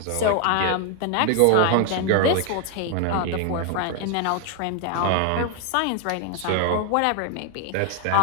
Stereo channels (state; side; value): different; both; correlation 0.00